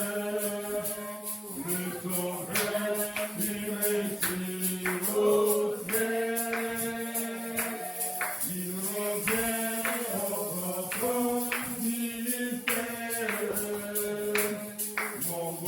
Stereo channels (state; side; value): identical; both; correlation 1.00